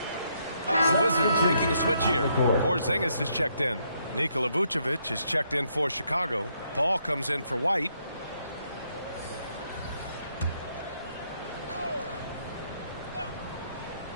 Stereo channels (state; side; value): inverted; both; correlation -0.74